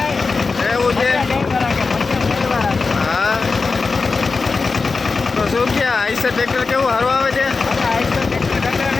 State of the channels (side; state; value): right; quieter; 4.3 dB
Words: એવું છે? હા, તો શું કે આઈસર ટ્રેક્ટર કેવું સારું આવે છે?